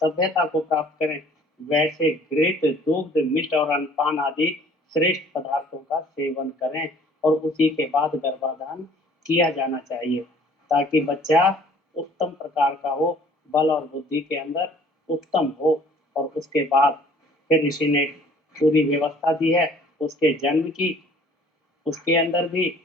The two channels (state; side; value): normal; both; correlation 0.54